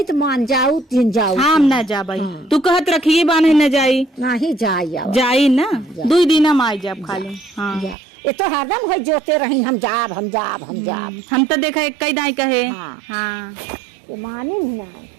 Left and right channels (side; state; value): left; drops out; at 8.0 s